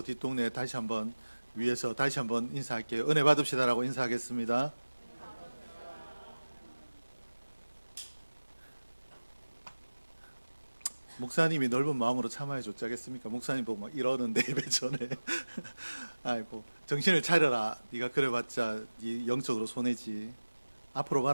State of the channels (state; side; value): inverted; both; correlation -1.00